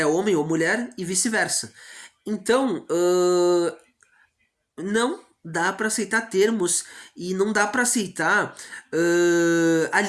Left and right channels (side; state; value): both; identical; correlation 1.00